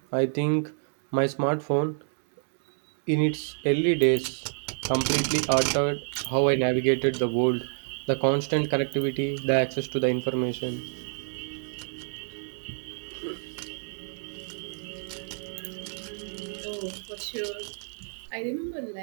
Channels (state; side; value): silent; left; digital silence